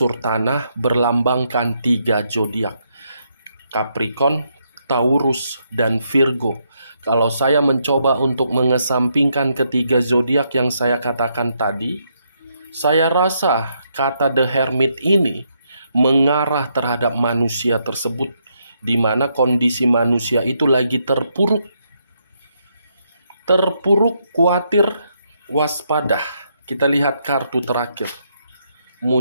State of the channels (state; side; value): inverted; both; correlation -0.77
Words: tanah, berlambangkan 3 zodiak. Capricorn, Taurus, dan Virgo. Kalau saya mencoba untuk mengesampingkan ketiga zodiak yang saya katakan tadi, saya rasa kata The Hermit ini mengarah terhadap manusia tersebut di mana kondisi manusia itu lagi terpuruk, khawatir, waspada. Kita lihat kartu terakhir,